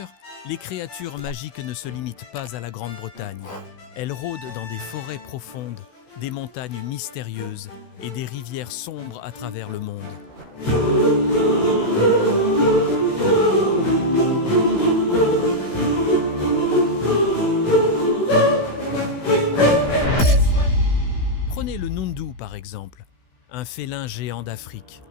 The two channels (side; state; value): right; late; 16 ms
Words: les créatures magiques ne se limitent pas à la Grande-Bretagne. Elles rôdent dans des forêts profondes, des montagnes mystérieuses et des rivières sombres à travers le monde. Prenez le Nundu par exemple, un félin géant d'Afrique.